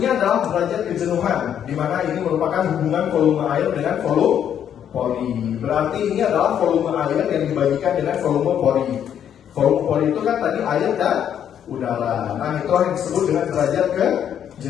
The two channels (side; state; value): right; quieter; 9.3 dB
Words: adalah derajat kejenuhan, di mana ini merupakan hubungan volume air dengan volume pori. Berarti ini adalah volume air yang dibagikan dengan volume pori. Volume pori itu kan tadi air dan udara. Nah, itu yang disebut dengan derajat